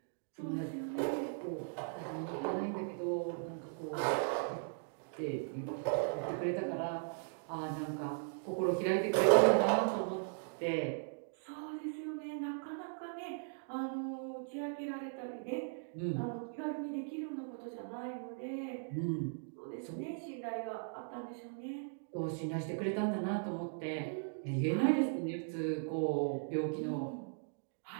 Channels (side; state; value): left; silent; digital silence